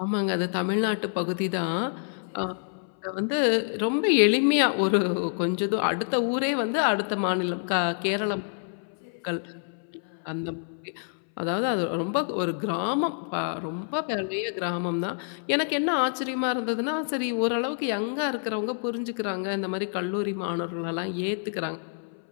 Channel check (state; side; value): silent; right; 60 dB below the other